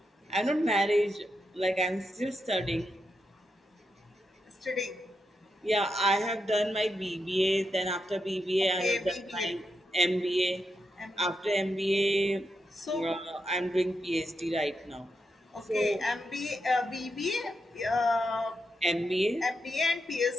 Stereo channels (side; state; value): both; normal; correlation 0.85